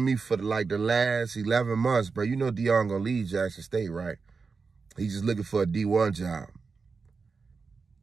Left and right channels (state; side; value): quieter; left; 4.8 dB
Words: me for like the last 11 months, bro, you know Deion gonna leave Jackson State, right? He's just looking for a D1 job.